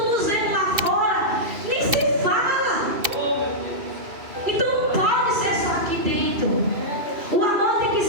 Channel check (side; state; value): left; late; 2.7 ms